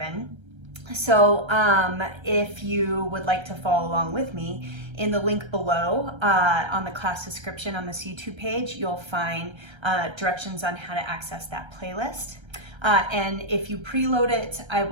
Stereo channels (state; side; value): late; left; 1.3 ms